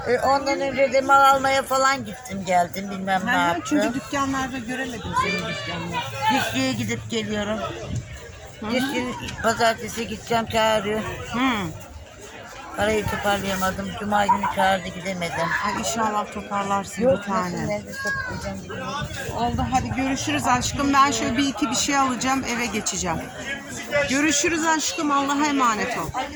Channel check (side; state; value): both; identical; correlation 1.00